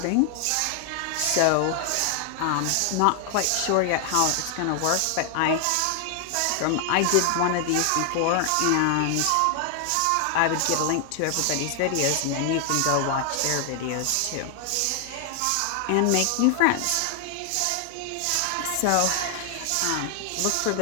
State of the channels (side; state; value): both; different; correlation 0.00